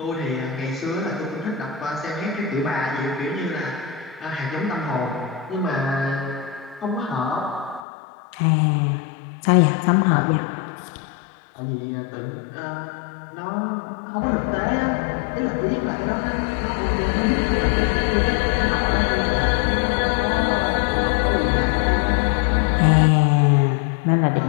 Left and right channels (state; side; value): drops out; right; at 7.9 s